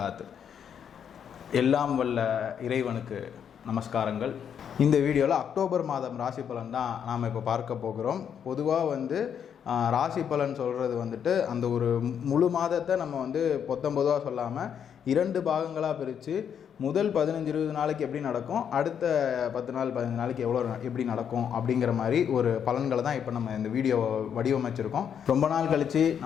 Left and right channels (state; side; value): quieter; right; 8.2 dB